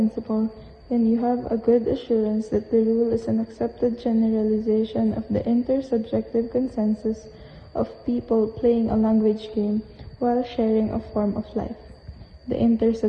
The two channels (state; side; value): identical; both; correlation 1.00